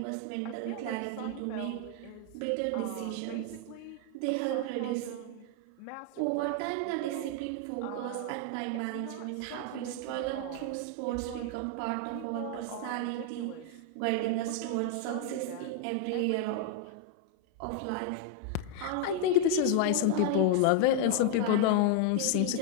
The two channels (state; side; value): different; both; correlation 0.00